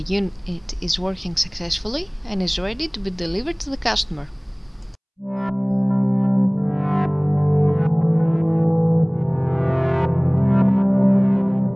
unit is working successfully and is ready to be delivered to the customer.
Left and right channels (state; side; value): identical; both; correlation 1.00